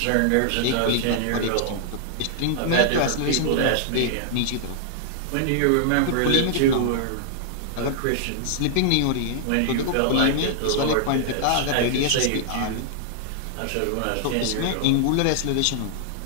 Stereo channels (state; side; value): different; both; correlation -0.01